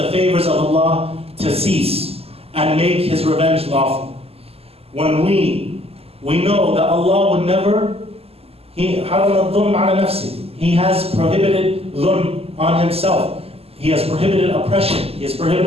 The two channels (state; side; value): late; left; 0.29 ms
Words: favors of Allah to cease and make His revenge lawful. When we know that Allah would never, He has prohibited dhulm on Himself. He has prohibited oppression. He has